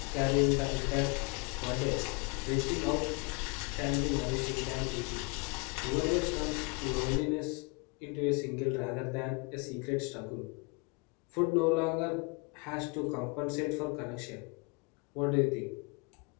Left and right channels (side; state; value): right; quieter; 30.0 dB